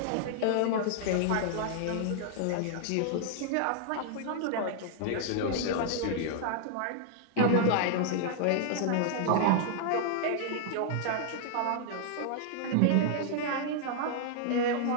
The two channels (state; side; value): different; both; correlation -0.01